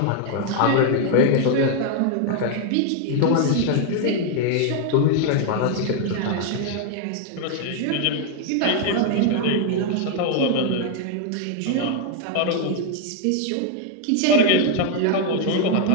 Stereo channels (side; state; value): both; different; correlation 0.00